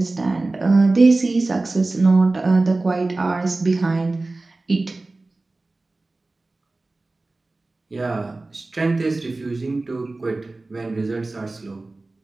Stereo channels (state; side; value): quieter; left; 3.2 dB